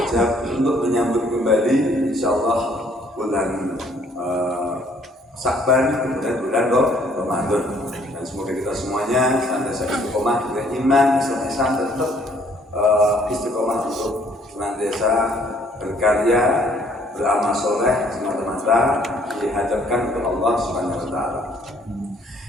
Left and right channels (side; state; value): both; normal; correlation 0.62